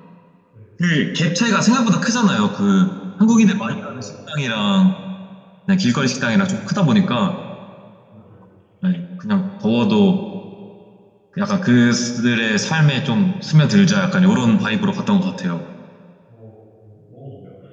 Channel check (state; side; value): identical; both; correlation 1.00